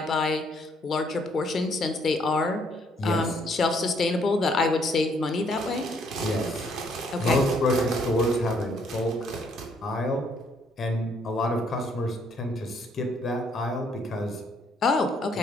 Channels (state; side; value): normal; both; correlation 0.68